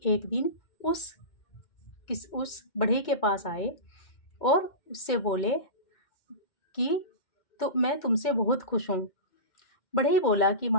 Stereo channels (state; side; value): late; right; 2.1 ms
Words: एक दिन उस बढ़ई के पास आए और उससे बोले कि तो मैं तुमसे बहुत खुश हूँ। बढ़ई बोला कि